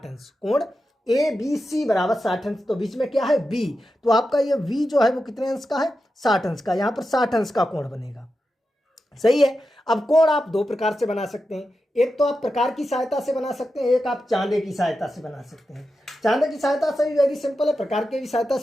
अंश, कोण ए बी सी बराबर 60 अंश, तो बीच में क्या है, बी। तो आपका ये वी जो है वो कितने अंश का है, 60 अंश का। यहाँ पर 60 अंश का कोण बनेगा। सही है। अब कोण आप दो प्रकार से बना सकते हैं, एक तो आप प्रकार की सहायता से बना सकते हैं, एक आप चांदे की सहायता से बना सकते हैं। चांदे की सहायता से भी वेरी सिंपल है, प्रकार की भी सहायता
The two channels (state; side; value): normal; both; correlation 0.90